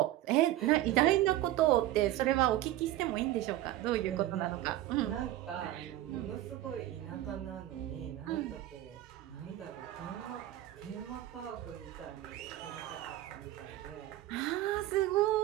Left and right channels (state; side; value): quieter; left; 14.5 dB